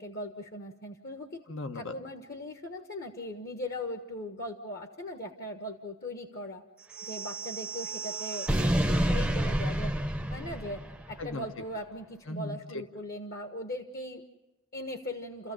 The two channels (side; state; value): both; normal; correlation 0.63